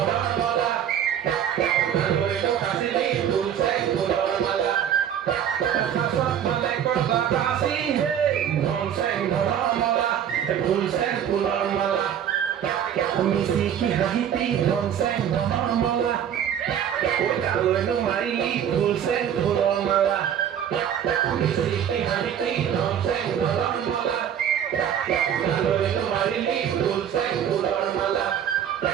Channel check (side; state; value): left; quieter; 9.3 dB